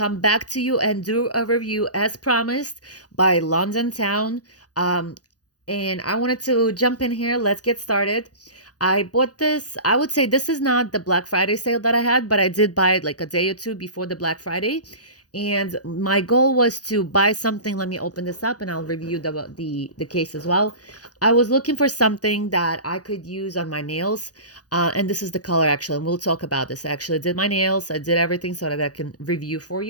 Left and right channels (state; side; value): late; right; 0.68 ms